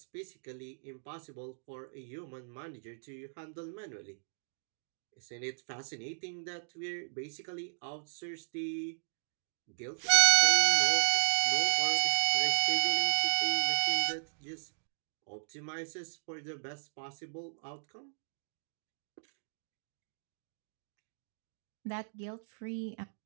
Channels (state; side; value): silent; left; digital silence